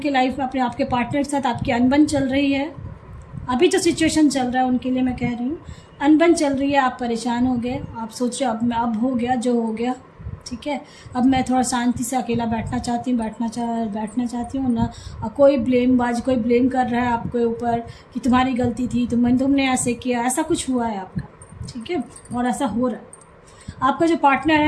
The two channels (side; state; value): both; identical; correlation 1.00